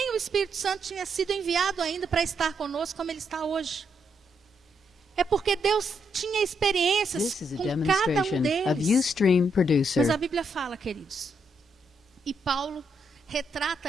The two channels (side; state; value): both; normal; correlation 0.78